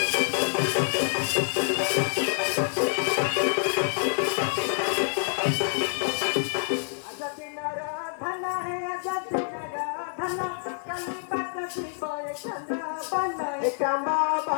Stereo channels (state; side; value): silent; right; digital silence